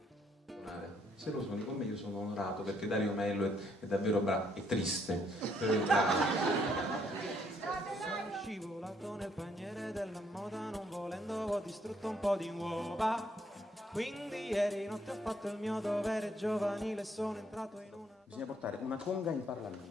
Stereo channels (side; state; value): both; normal; correlation 0.70